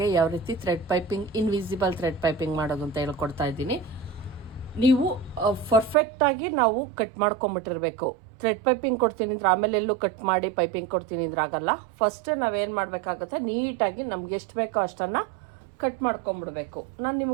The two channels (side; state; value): left; drops out; at 6.0 s